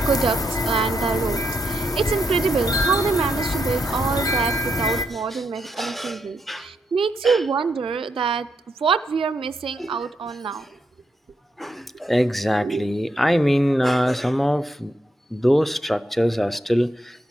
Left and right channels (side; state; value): both; normal; correlation 0.80